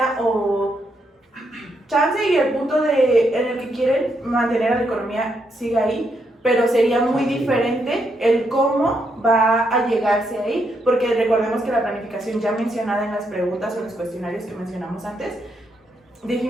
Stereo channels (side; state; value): both; normal; correlation 0.78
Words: o chance, y el punto en el que quieren mantener a la economía sigue ahí, pero sería muy diferente el cómo va a llegarse ahí, porque recordemos que la planificación ya mencionada en las preguntas o en los cuestionarios que mencionamos antes,